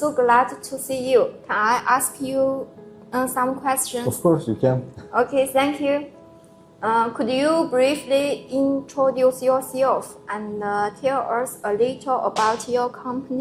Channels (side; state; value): both; identical; correlation 1.00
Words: glad to see you. Can I ask you some questions? Of course, you can. Okay, thank you. Could you briefly introduce yourself and tell us a little about your